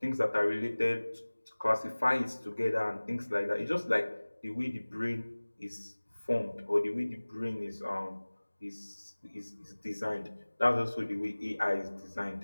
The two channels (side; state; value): both; inverted; correlation -1.00